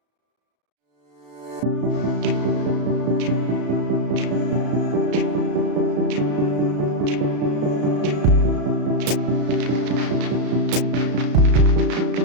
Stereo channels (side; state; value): left; late; 34 ms